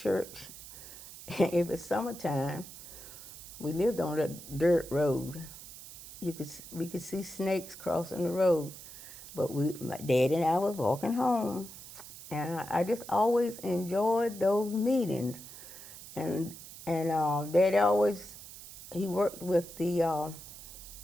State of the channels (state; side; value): noise; right; hiss, 14 dB below the sound